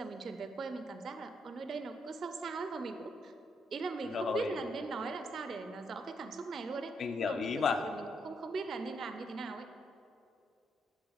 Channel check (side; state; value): both; normal; correlation 0.77